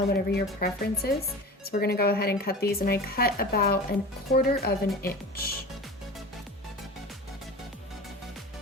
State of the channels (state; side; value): normal; both; correlation 0.34